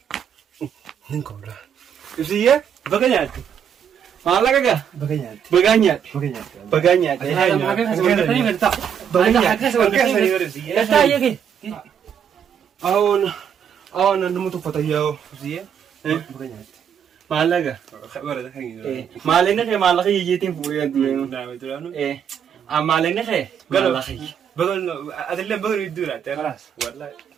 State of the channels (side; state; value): left; quieter; 8.2 dB